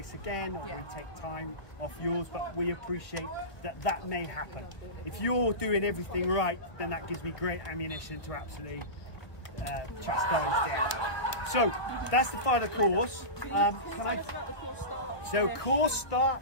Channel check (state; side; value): late; right; 1.4 ms